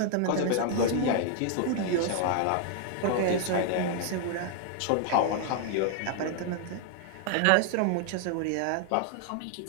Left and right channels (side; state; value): both; different; correlation 0.00